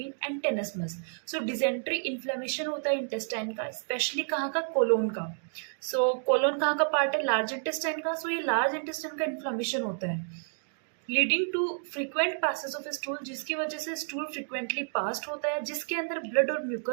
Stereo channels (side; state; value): left; silent; digital silence